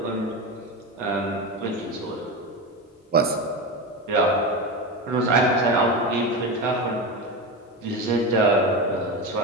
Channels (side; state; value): both; normal; correlation 0.21